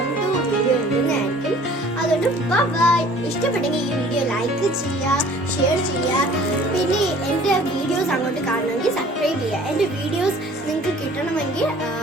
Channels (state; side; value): normal; both; correlation 0.51